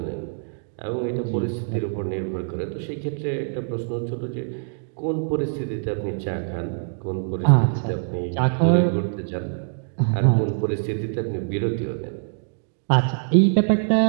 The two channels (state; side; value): silent; left; digital silence